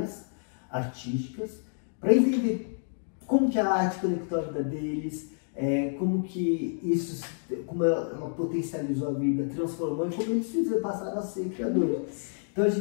artísticas, para entender como que a arte conectou a vida deles, como que isso, como ela potencializou a vida, transformou e como eles passaram a ser criadores. Então a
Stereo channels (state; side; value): silent; right; digital silence